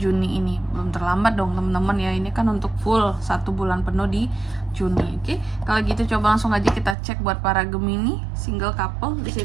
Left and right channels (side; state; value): left; drops out; at 7.0 s